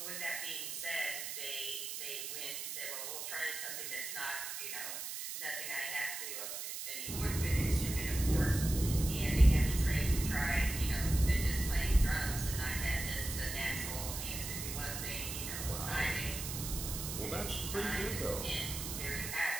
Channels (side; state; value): right; noise; hiss, 6 dB below the sound